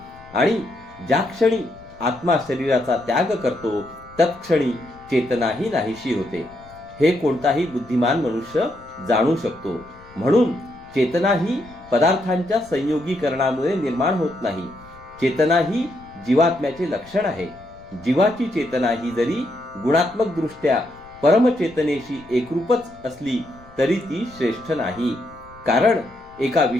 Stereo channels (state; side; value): noise; left; rumble, 24 dB below the sound